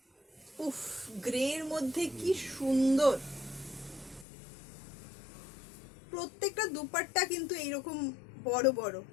উফ, গ্রের মধ্যে কি সুন্দর! প্রত্যেকটা দুপাট্টা কিন্তু এইরকম বড় বড়,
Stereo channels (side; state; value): right; drops out; at 4.2 s